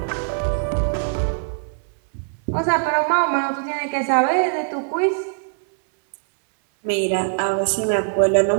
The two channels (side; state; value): left; silent; 65 dB below the other